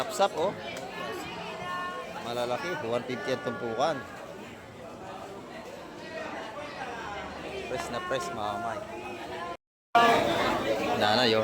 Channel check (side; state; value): both; identical; correlation 1.00